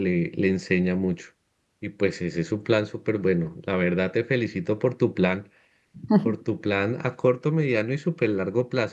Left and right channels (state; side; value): identical; both; correlation 1.00